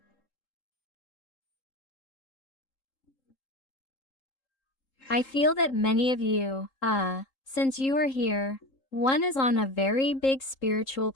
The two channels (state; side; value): late; right; 3.8 ms